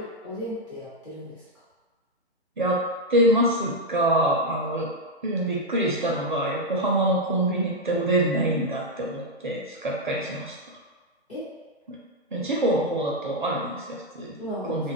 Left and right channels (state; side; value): normal; both; correlation 0.01